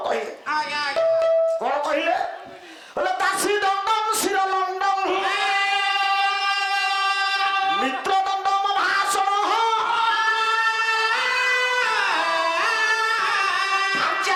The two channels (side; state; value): both; identical; correlation 1.00